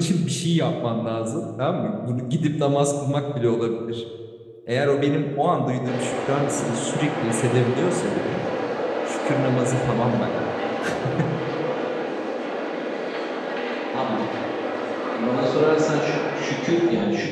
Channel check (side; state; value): both; identical; correlation 1.00